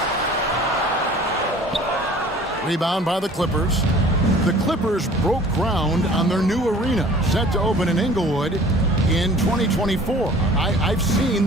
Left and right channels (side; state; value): both; normal; correlation 0.48